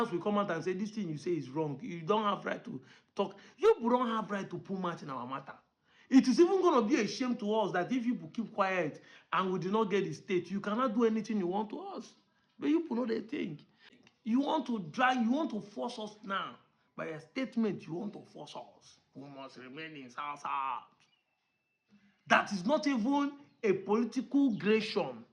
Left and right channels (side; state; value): both; identical; correlation 1.00